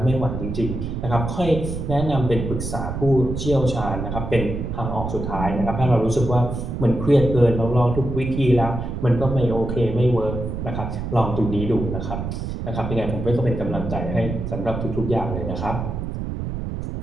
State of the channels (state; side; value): noise; right; rumble, 5 dB below the sound